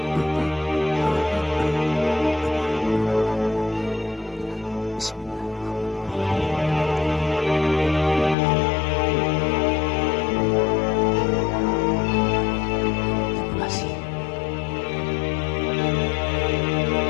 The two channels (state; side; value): drops out; right; at 8.3 s